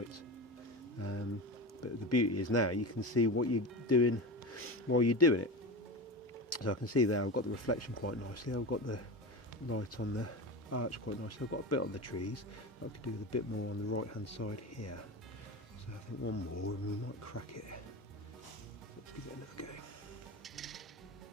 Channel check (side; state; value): both; normal; correlation 0.24